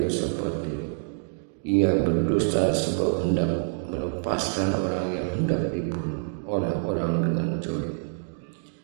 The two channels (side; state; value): left; silent; digital silence